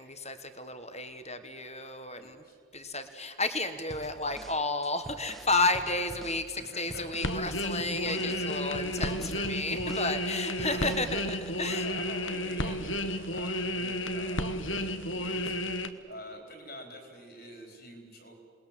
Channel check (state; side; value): normal; both; correlation 0.02